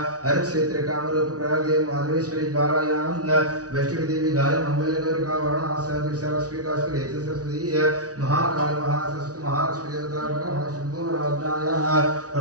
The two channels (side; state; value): left; late; 0.68 ms